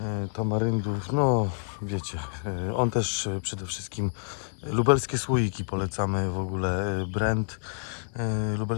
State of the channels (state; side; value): silent; right; digital silence